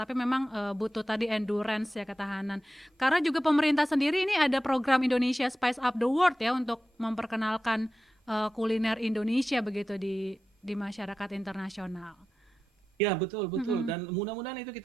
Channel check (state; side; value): normal; both; correlation 0.92